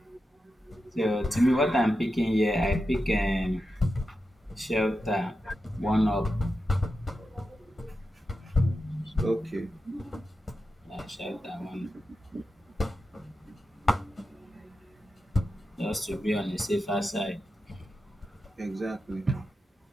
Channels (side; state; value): both; normal; correlation 0.90